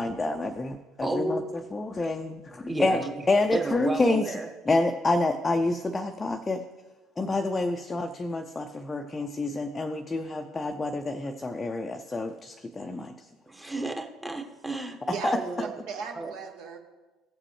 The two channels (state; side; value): normal; both; correlation 0.87